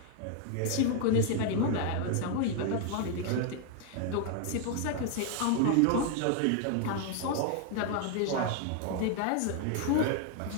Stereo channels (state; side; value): different; both; correlation 0.00